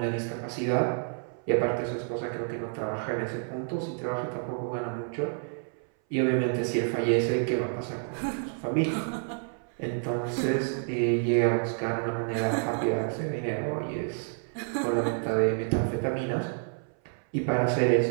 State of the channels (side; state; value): left; silent; 59 dB below the other